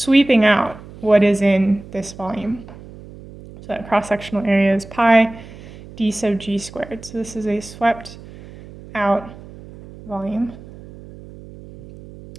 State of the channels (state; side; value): noise; right; hum, 18 dB below the sound